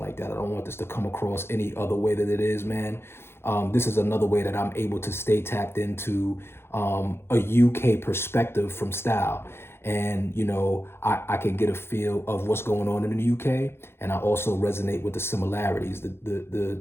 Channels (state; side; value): late; right; 0.12 ms